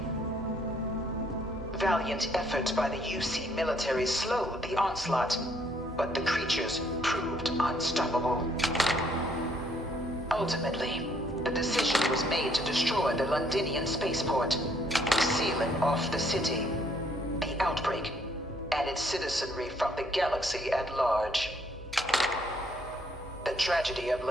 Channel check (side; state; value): both; normal; correlation 0.67